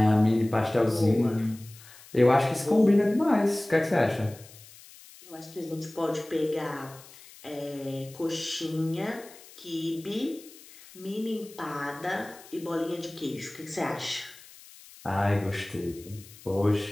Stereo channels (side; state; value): left; noise; hiss, 21 dB below the sound